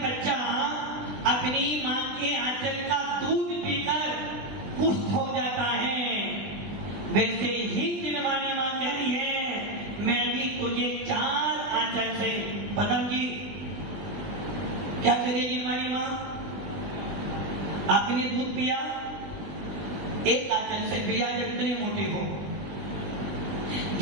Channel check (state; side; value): late; left; 20 ms